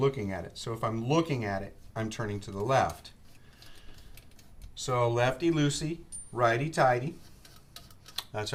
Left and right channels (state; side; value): identical; both; correlation 1.00